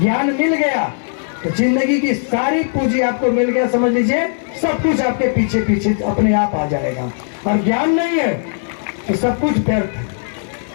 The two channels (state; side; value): silent; right; digital silence